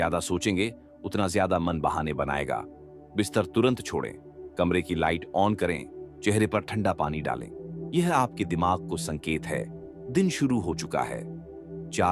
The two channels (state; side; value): identical; both; correlation 1.00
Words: सोचेंगे उतना ज्यादा मन बहाने बनाएगा। बिस्तर तुरंत छोड़ें, कमरे की लाइट ऑन करें, चेहरे पर ठंडा पानी डालें। यह आपके दिमाग को संकेत है, दिन शुरू हो चुका है।